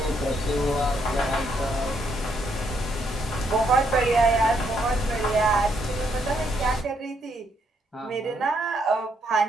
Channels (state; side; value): normal; both; correlation 0.74